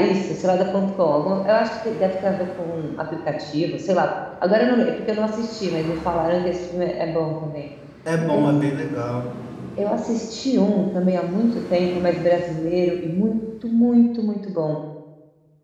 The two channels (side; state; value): both; identical; correlation 1.00